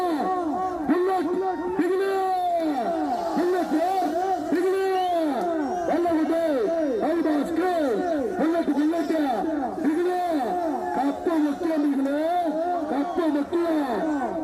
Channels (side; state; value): both; identical; correlation 1.00